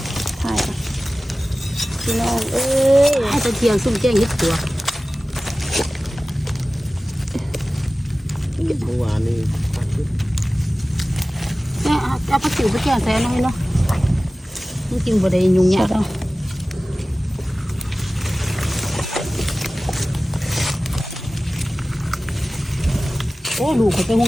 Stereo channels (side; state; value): both; normal; correlation 0.96